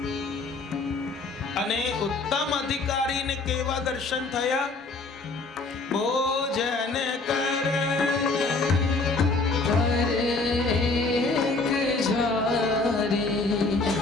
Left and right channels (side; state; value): right; quieter; 3.6 dB